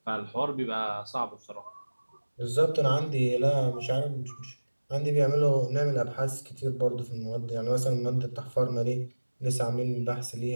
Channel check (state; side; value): inverted; both; correlation -1.00